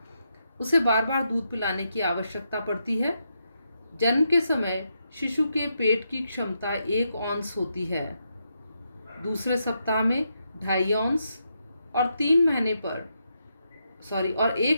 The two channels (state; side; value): inverted; both; correlation -0.82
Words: उसे बार बार दूध पिलाने की आवश्यकता पड़ती है। जन्म के समय शिशु के पेट की क्षमता 1 औंस होती है, दूसरे सप्ताह में 2.5 औंस और 1